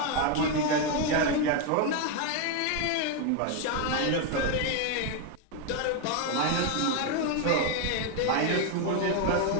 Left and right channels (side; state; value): both; different; correlation 0.01